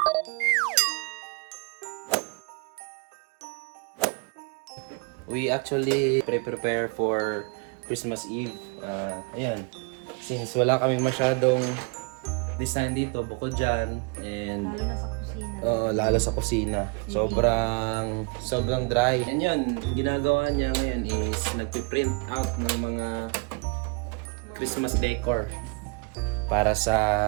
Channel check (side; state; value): left; quieter; 33.1 dB